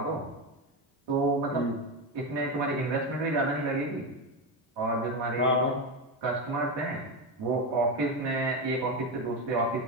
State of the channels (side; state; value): both; normal; correlation 0.14